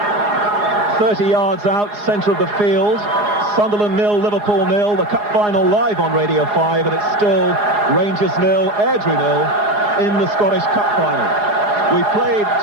30 yards out, centre of the field. Sunderland 0, Liverpool 0. The cup final live on Radio 5, and it's still Rangers 0, Airdrie 0 in the Scottish Cup final. We played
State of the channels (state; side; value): late; left; 4.8 ms